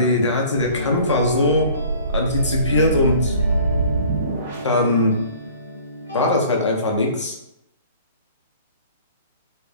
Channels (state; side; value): inverted; both; correlation -0.50